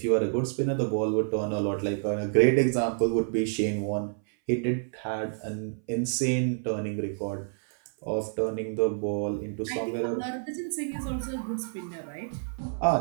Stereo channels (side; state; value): left; silent; 59 dB below the other